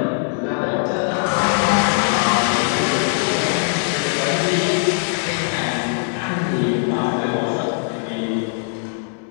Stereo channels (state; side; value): silent; right; digital silence